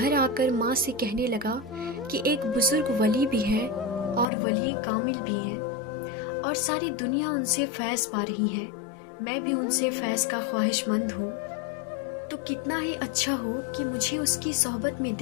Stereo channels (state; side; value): drops out; right; at 4.2 s